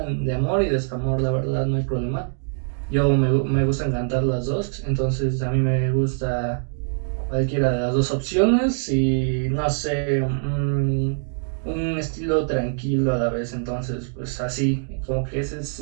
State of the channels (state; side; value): silent; left; digital silence